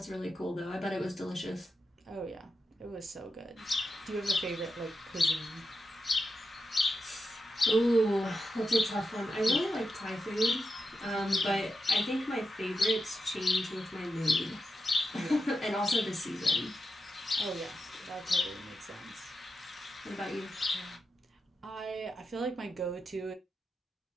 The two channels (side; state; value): both; normal; correlation 0.88